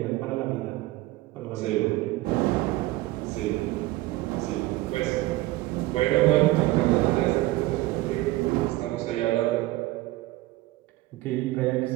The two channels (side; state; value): left; quieter; 18.2 dB